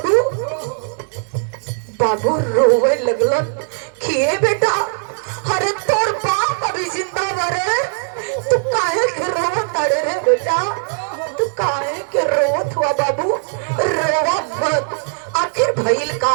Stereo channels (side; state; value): left; silent; digital silence